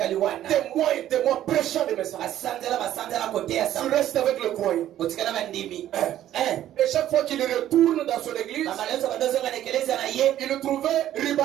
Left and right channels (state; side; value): quieter; left; 12.3 dB